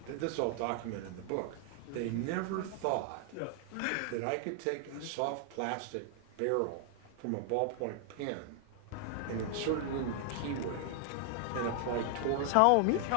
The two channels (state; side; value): different; both; correlation 0.00